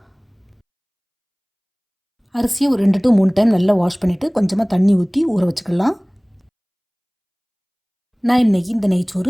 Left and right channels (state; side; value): identical; both; correlation 1.00